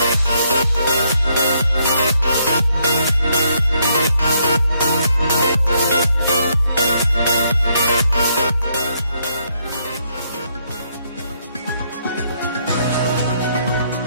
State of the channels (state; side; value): inverted; both; correlation -0.73